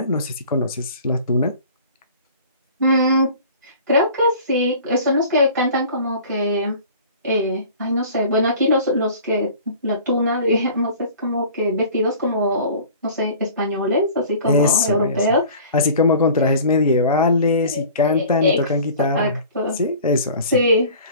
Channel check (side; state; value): both; inverted; correlation -0.45